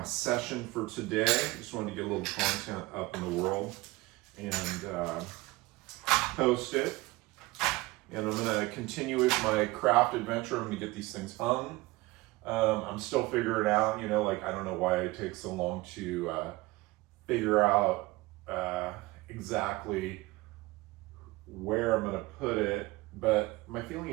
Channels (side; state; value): left; quieter; 21.2 dB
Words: session for today. Just wanted to get a little content up in the world and post it. And I'm gonna continue with my craft adventure. I'm gonna get these things hung. I'm still figuring out, like, I don't know why it takes so long to figure out exactly where I'm gonna put it, but my feeling